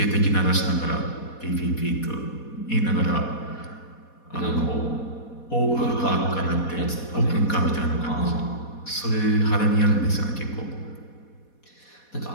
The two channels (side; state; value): right; late; 4.2 ms